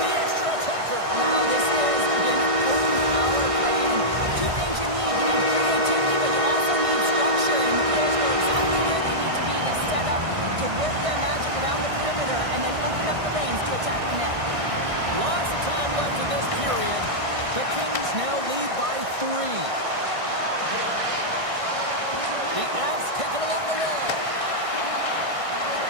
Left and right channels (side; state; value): left; late; 1.6 ms